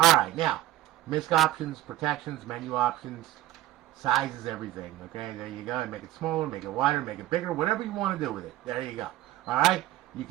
now, misc options, protections, menu options, sizes, everything. Okay, there you go. Make it smaller, make it wider, make it bigger, whatever you want to do with it. There you go. Alright, you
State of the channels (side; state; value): left; quieter; 15.1 dB